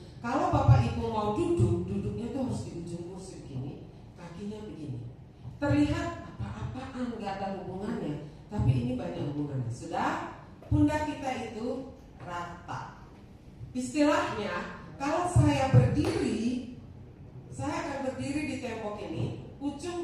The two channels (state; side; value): identical; both; correlation 1.00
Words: kalau Bapak Ibu mau duduk, duduknya tuh harus di ujung kursi begini, kakinya begini. Terlihat apa-apaan nggak ada hubungannya, tapi ini banyak hubungannya. Sudah, pundak kita itu rata. Istilahnya, kalau saya berdiri, saya akan berdiri di tembok ini.